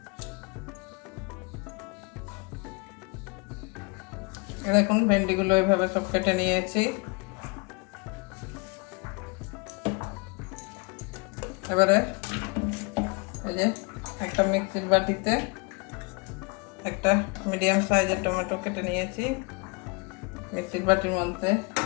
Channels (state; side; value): quieter; right; 31.1 dB